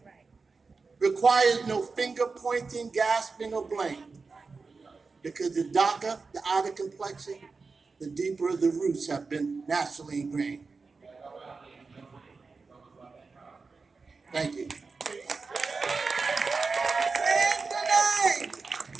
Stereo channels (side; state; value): left; quieter; 4.4 dB